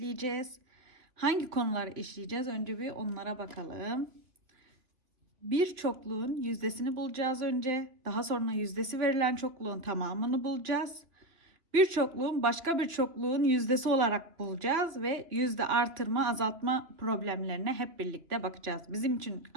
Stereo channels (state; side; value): late; left; 3.0 ms